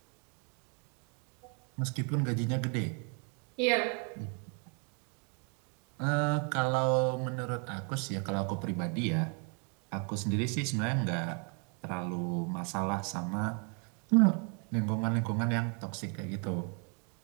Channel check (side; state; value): left; quieter; 37.7 dB